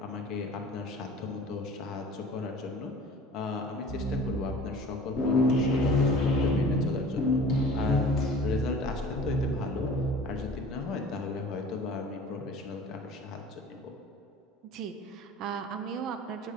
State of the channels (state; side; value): normal; both; correlation 0.44